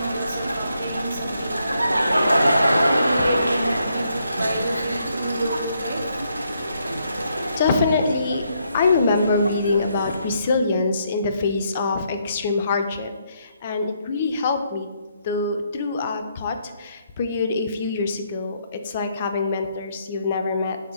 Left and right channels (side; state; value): both; inverted; correlation -0.75